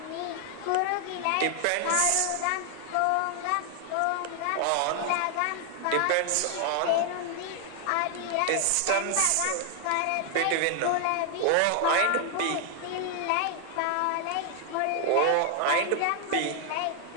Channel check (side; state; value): both; different; correlation 0.00